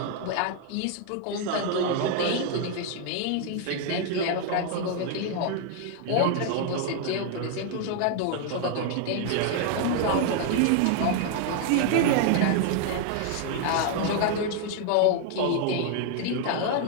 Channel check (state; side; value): different; both; correlation 0.00